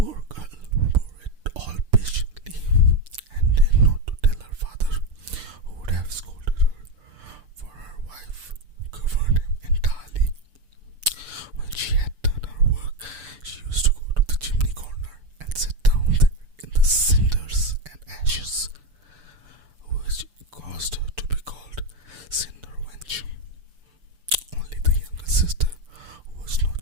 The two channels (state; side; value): late; left; 6.9 ms